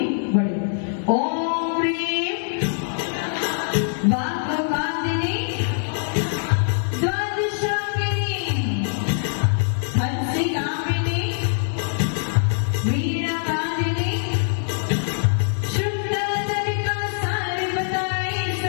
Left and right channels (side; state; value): right; silent; digital silence